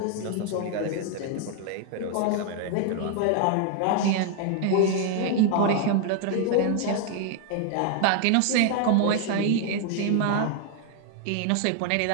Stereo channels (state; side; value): different; both; correlation 0.00